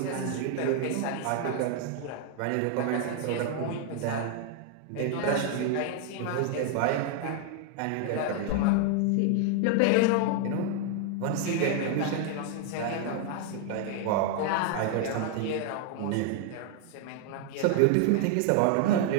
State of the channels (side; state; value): both; different; correlation 0.00